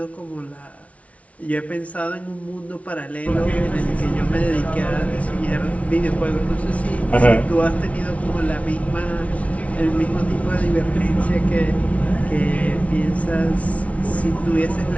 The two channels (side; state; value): right; late; 0.065 ms